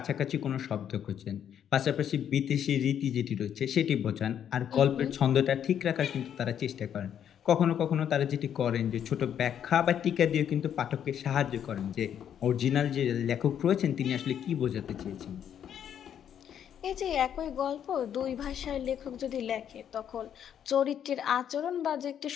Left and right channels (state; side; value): quieter; right; 9.2 dB